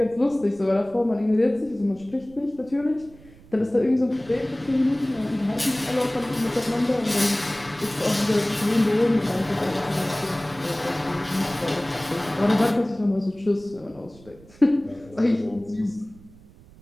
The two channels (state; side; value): noise; right; rumble, 23 dB below the sound